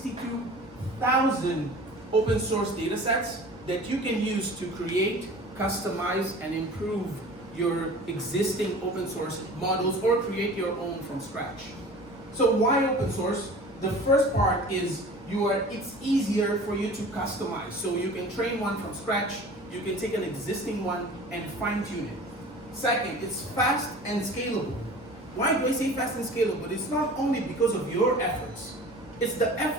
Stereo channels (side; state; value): both; normal; correlation 0.41